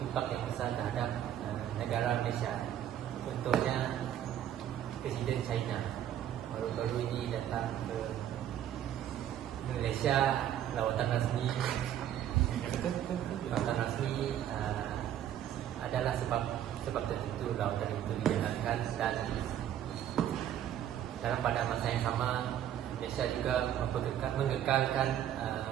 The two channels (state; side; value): quieter; left; 10.8 dB